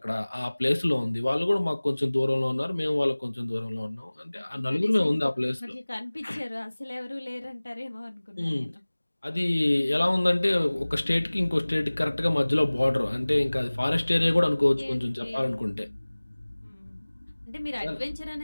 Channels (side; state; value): both; inverted; correlation -1.00